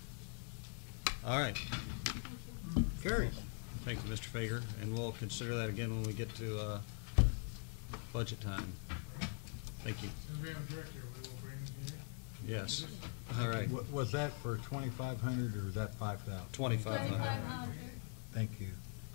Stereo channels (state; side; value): quieter; right; 38.5 dB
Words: All right. Carries. Thank you, Mr. Fager, and we'll consider that again when we get to budget time. Thank you. And we have a director, we will bring him here. Yes. All right. Was that for 2,500 or was that 5,000? 2,500. Thank you.